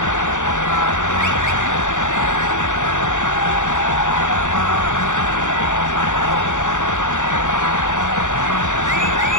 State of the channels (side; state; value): right; late; 0.86 ms